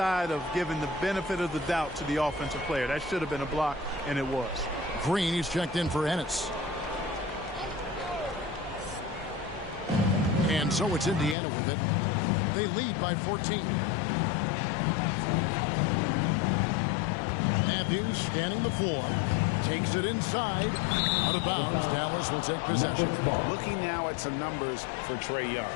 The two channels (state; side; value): drops out; right; at 11.4 s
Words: of giving the benefit of the doubt to the offensive player. That should have been a block, and it was. Green, he's checked in for Ennis. And so it's Indiana with it. They lead by 14. Matthews standing the floor. Takes it inside. Out of bounds. Dallas will take possession. Looking now at some numbers for Trae Young.